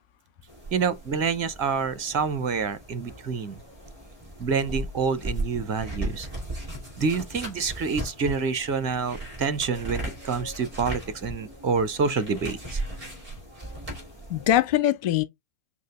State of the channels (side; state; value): left; late; 1.9 ms